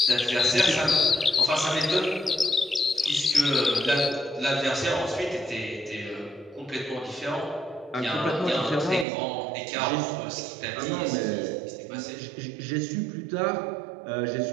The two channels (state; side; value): drops out; left; at 9.1 s